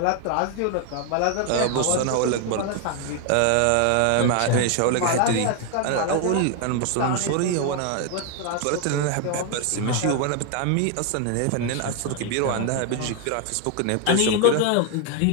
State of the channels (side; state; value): both; different; correlation 0.01